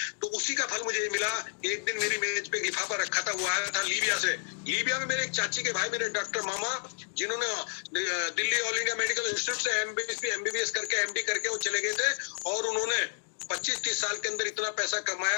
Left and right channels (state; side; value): silent; right; digital silence